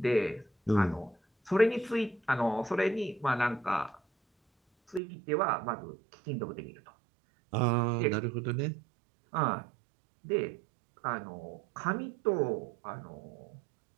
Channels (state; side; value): drops out; left; at 5.0 s